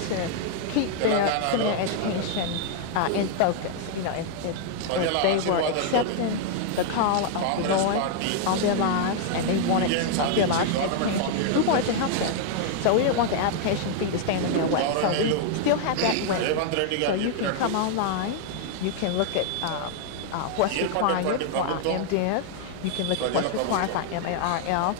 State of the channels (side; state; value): both; different; correlation 0.00